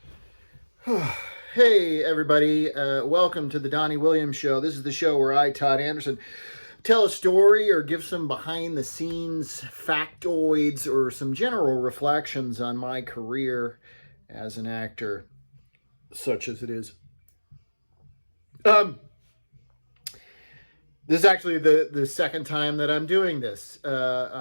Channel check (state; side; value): inverted; both; correlation -1.00